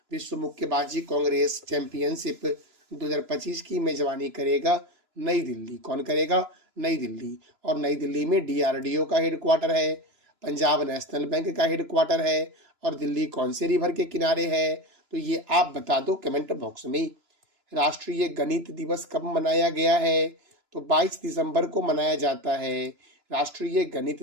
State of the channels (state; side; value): late; left; 3.0 ms